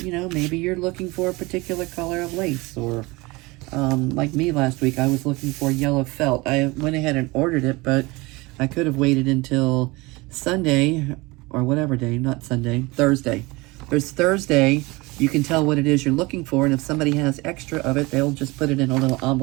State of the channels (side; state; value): left; quieter; 23.3 dB